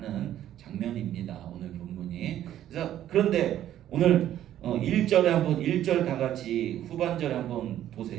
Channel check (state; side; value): quieter; left; 11.9 dB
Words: 장면입니다. 오늘 본문이. 그래서 그런데 오늘 1절에 한번 1절 다 같이 후반절에 한번